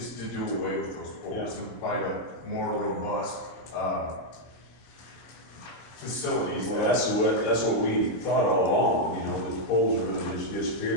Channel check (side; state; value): right; late; 25 ms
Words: to do away with those poles and provide a more robust, facilities. Well, that's what we thought all along, you know, that the poles are gonna just